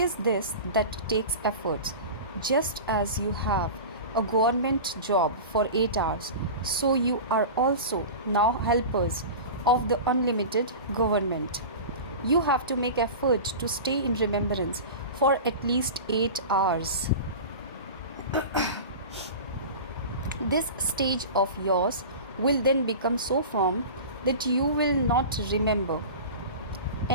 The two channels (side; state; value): both; inverted; correlation -0.32